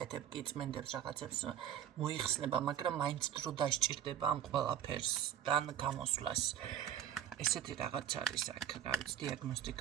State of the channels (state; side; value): quieter; left; 10.0 dB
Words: კი წმენდებს რაღაცებს მოიხსნება, მაგრამ მაინც დრო დასჭირდება ამ ყველაფერსთან გამოსვლას. ესეთი რაღაც არის აქ, რა ვიცი,